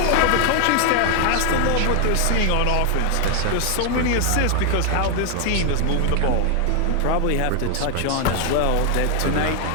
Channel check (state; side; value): different; both; correlation 0.00